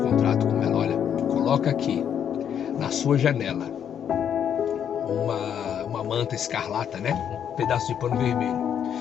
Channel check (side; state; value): right; quieter; 8.8 dB